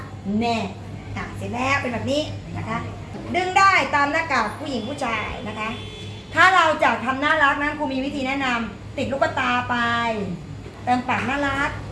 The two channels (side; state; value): both; identical; correlation 1.00